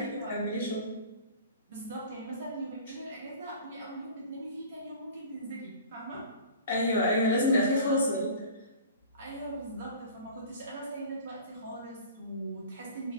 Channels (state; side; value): inverted; both; correlation -0.42